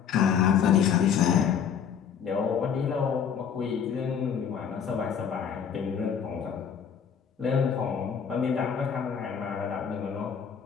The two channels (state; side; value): quieter; right; 7.5 dB